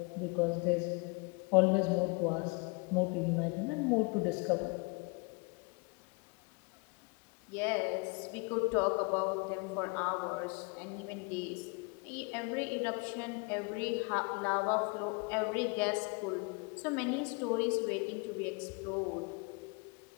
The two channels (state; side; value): quieter; right; 31.2 dB